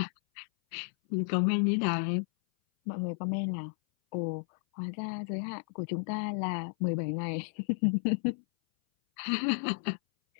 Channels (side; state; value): right; silent; 56 dB below the other